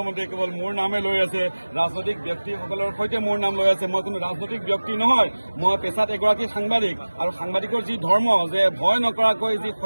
কেৱল মোৰ নামে লৈ আছে, ৰাজনৈতিক ব্যক্তিসকলৰ সৈতে মোৰ নাম লৈ আছে। মই কোনো ৰাজনৈতিক ব্যক্তি নহয়, মই পেছাত এগৰাকী সাংবাদিক আৰু সাংবাদিকৰ যি ধৰ্ম যে ভয় নকৰাকৈ যি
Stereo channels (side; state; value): both; inverted; correlation -1.00